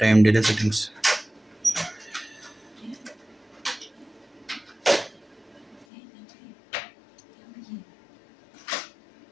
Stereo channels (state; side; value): drops out; right; at 5.9 s